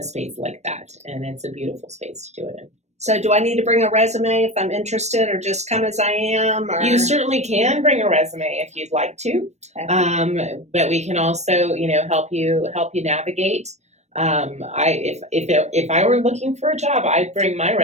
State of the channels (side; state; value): left; late; 0.32 ms